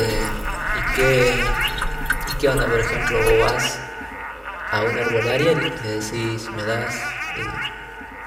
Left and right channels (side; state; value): both; identical; correlation 1.00